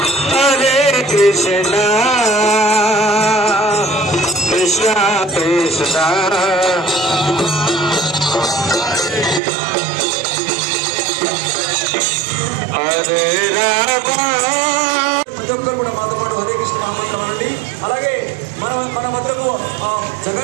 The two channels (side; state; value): left; drops out; at 9.4 s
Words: Krishna Krishna Krishna Hare Rama కూడా మాతో పాటు హరే కృష్ణ నామండి. అలాగే మన మధ్యలో